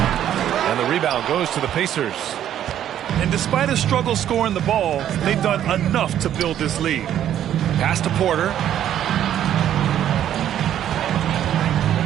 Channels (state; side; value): quieter; left; 10.8 dB